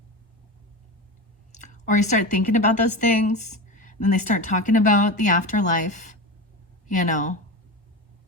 Or you start thinking about those things, and then they start talking about the afterlife, and all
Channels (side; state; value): both; normal; correlation 0.24